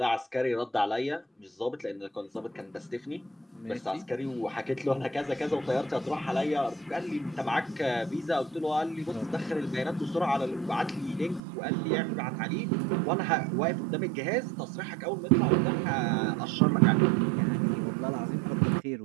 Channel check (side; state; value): left; drops out; at 11.4 s